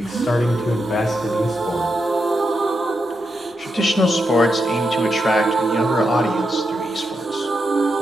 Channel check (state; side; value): normal; both; correlation 0.84